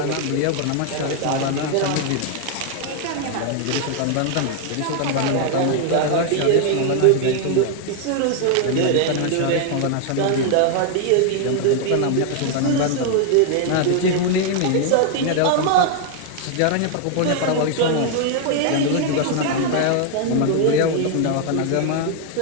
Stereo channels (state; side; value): different; both; correlation 0.00